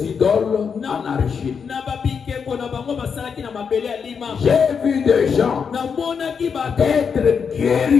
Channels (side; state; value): right; quieter; 6.3 dB